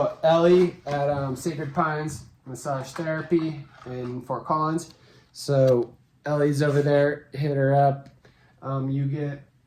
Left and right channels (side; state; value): both; identical; correlation 1.00